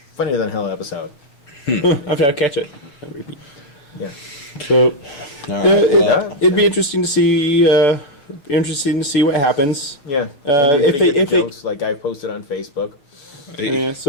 than hell episode. I'll catch it and repeat. Yeah. So it'd be interesting interesting to see what happens. Yeah. If they jokes like I posted on Facebook. Yeah,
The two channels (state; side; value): late; right; 6.8 ms